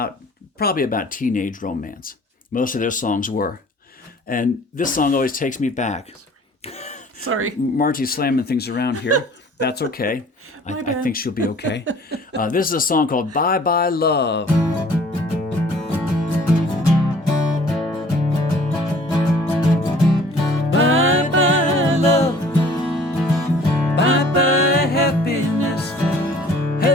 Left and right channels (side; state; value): both; normal; correlation 0.52